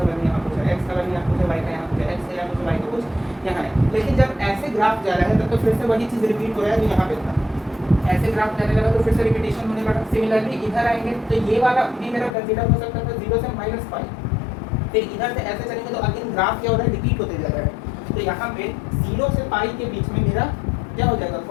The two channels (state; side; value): drops out; right; at 12.4 s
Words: वैल्यू यहाँ कुछ है, x का वैल्यू यहाँ कुछ है, y का यहाँ कुछ है, x का यहाँ कुछ है, y का कुछ यहाँ है। लेकिन जब ऐसे ग्राफ जा रहा है तब तो फिर से वही चीज़ रिपीट हो रहा है जो यहाँ पे था। ऐसे ग्राफ जाने लगा तो फिर से रिपीटेशन होने लगा। सिमिलरली इधर आएंगे तो ये वाला भी मेरा कंसीडर हो सकता था 0 से -π, फिर इधर से ऐसे चलेंगे तो अगेन ग्राफ क्या हो रहा है, रिपीट होते जा रहा है। तो यहाँ पे 0 से π के बीच में मेरा क्या हो जाएगा,